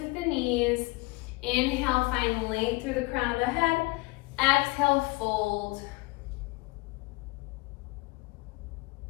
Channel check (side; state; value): right; quieter; 24.6 dB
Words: the knees. Inhale, find length through the crown of the head. Exhale, fold.